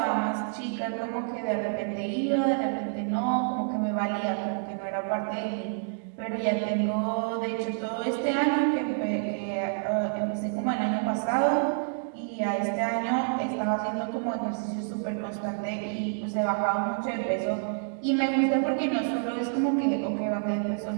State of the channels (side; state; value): left; silent; digital silence